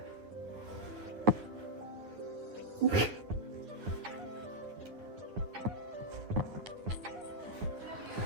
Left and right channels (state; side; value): late; left; 9.8 ms